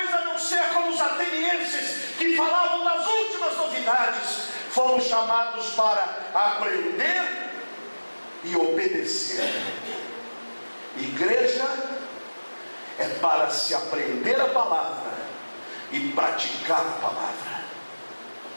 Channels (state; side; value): inverted; both; correlation -1.00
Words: a não ser como os atenienses, que falavam das últimas novidades. Fomos chamados para aprender e obedecer. Igreja é para se aprender a palavra e praticar a palavra.